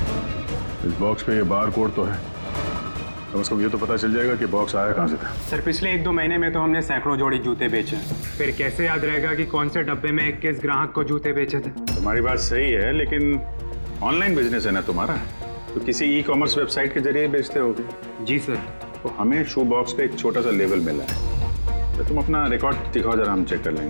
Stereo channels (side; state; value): both; inverted; correlation -1.00